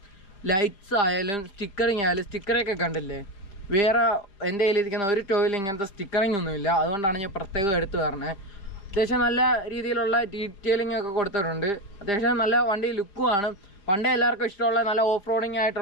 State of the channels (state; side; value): late; right; 5.0 ms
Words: ലൈറ്റ്സ് ആയാലും സ്റ്റിക്കറിങ് ആയാലും, സ്റ്റിക്കറൊക്കെ കണ്ടില്ലേ. വേറെ എൻ്റെ കയ്യിലിരിക്കുന്ന ഒരു ടോയിൽ ഇങ്ങനത്തെ സ്റ്റിക്കറിങ് ഒന്നുമില്ല. അതുകൊണ്ടാണ് ഞാൻ പ്രത്യേകം എടുത്തു പറഞ്ഞത്. അത്യാവശ്യം നല്ല രീതിയിലുള്ള ഡീറ്റെയിലിംഗ് ഒക്കെ കൊടുത്തിട്ടുണ്ട്. അത്യാവശ്യം നല്ല വണ്ടി ലുക്കുമാണ്. പണ്ടേ എല്ലാവർക്കും ഇഷ്ടമുള്ള നല്ല ഓഫ് റോഡിങ്